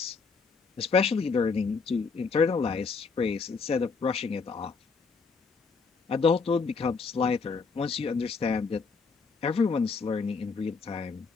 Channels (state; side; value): quieter; right; 4.8 dB